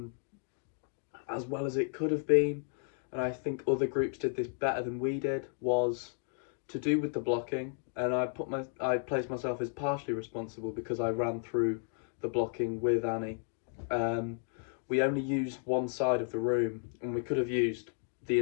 as well as it could have been, and I think other groups did this better than we did, was to do with the blocking. And I placed myself as partially responsible because I ran through the blocking with Annie. Um, we only used one side of the room, and we could have used the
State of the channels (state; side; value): silent; right; 56 dB below the other